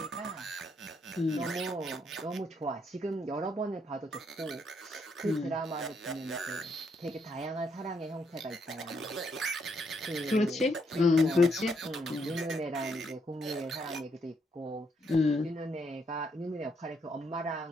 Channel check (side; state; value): both; normal; correlation 0.75